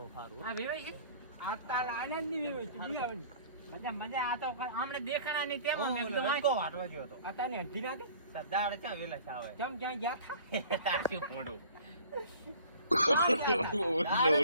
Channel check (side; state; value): both; inverted; correlation -0.48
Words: વેવાઈ છે આતા આનંદ ની વેવાઈ છે બિયાવની મજા મજા. આ તો આમણે દેખાણા ની તેમ કો વાટવા ગયો તો આતા ને અઢી ના દે સરદાર ચા વેલા છે આવે કેમ ક્યાં ગયા થા તાસી પોડો.